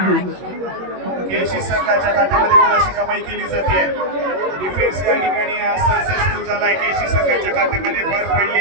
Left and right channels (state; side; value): late; left; 21 ms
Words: केळशी संघाच्या खात्यामध्ये गुणाशी कमाई केली जाते. डिफेन्स या ठिकाणी सक्सेसफुल झालाय. केळशी संघाच्या खात्यामध्ये भर पडली